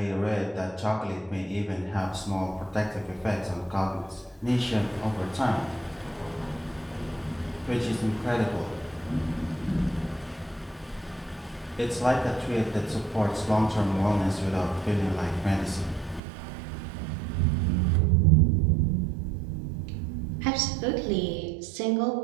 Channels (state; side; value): drops out; left; at 16.2 s